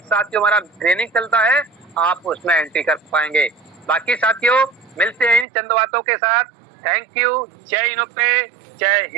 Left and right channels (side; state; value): left; drops out; at 5.5 s